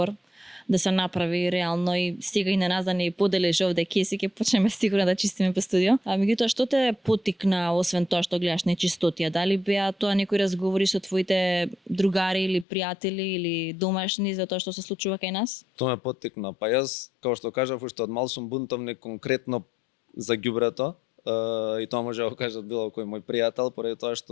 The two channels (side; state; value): right; drops out; at 12.7 s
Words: да се направи реално и сега и на нас да не поделиш овде кеси, ќе почнеме сигурно да чистиме по студио. А меѓутоа што те поттикна, освен тоа што гледаш нечистотија? Дали беа тоа некои разговори со твоите другари или пријатели или домашни за тоа што се случува кај нас? Тоа ме поттикна. Па јас, како што кажав, уште од мал сум бунтовник конкретно за ѓубрето. И тоа може да го кажат било кој мој пријател, поради тоа